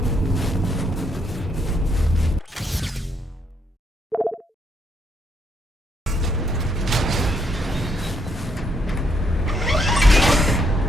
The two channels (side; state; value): both; normal; correlation 0.73